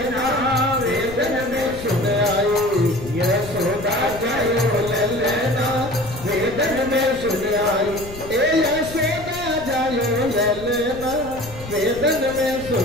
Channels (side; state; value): left; noise; rumble, 14 dB below the sound